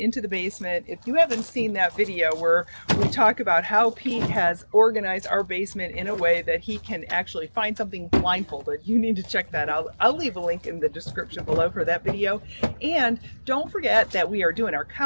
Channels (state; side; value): inverted; both; correlation -1.00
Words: the basement. If you haven't seen that video where we talk about how Pete has organized our basement in a way that he can actually find something blindfolded, you need to check that out. I'll leave a link in the description below for that video. And don't forget that we are doing our